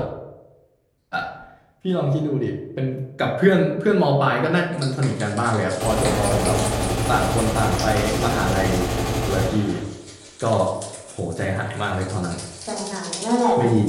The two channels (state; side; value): identical; both; correlation 1.00